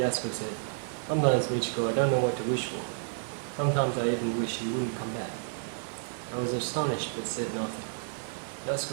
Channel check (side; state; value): left; silent; digital silence